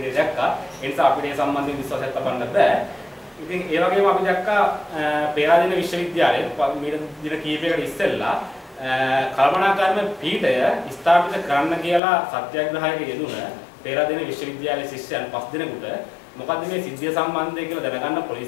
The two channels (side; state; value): right; drops out; at 12.0 s